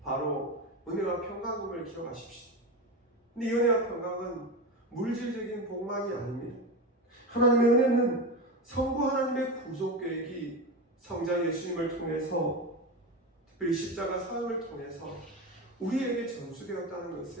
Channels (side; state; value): both; normal; correlation 0.20